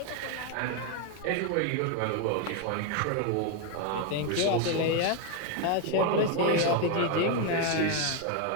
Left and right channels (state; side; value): different; both; correlation 0.02